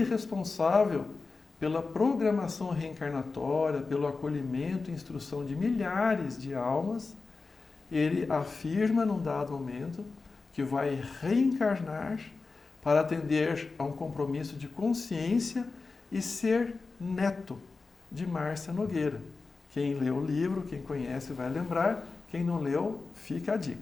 responsável pela programação reencarnatória, pelo acolhimento e instrução de milhares de almas. Ele afirma, num dado momento, que vai reencarnar para atender a um compromisso de consciência e ser neto de Márcia Nogueira. Quem leu o livro, quem conhece vai lembrar, quem não leu, fica a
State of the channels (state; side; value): quieter; right; 4.1 dB